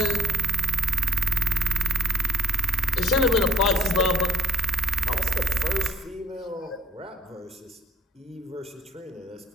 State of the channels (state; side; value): normal; both; correlation 0.59